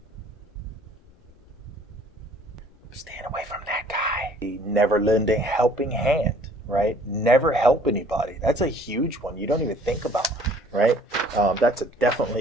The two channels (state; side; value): normal; both; correlation 0.55